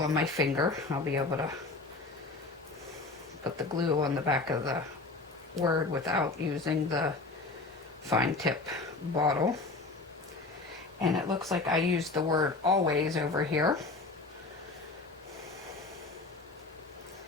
my finger, I'll be able to put the glue on the back of the word without using the fine tip bottle. And it looks like I used the word always over here.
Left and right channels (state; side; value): quieter; right; 3.5 dB